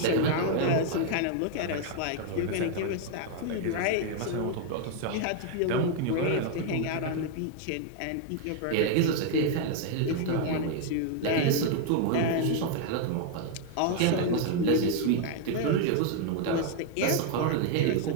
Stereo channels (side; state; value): both; different; correlation 0.00